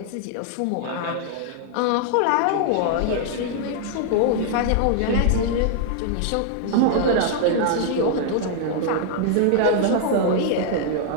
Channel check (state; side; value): different; both; correlation -0.01